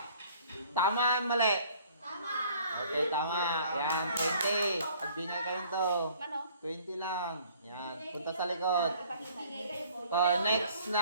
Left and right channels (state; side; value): inverted; both; correlation -0.55